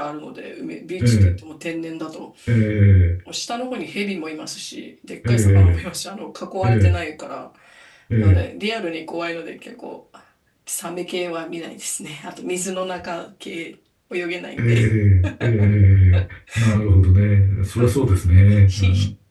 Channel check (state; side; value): identical; both; correlation 1.00